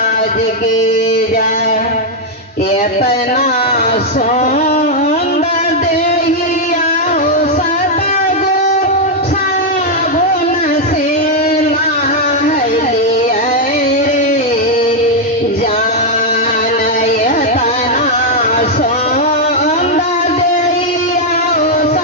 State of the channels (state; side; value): normal; both; correlation 0.00